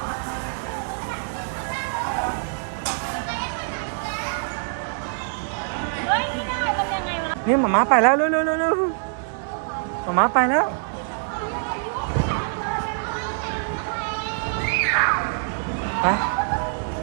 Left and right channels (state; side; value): silent; left; 62 dB below the other